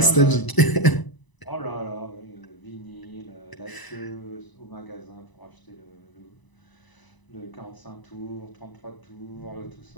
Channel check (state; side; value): late; right; 1.0 ms